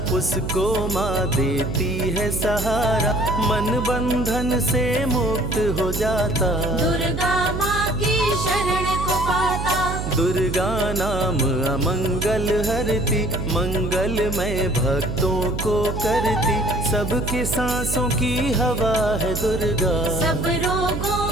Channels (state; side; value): noise; right; hum, 4 dB below the sound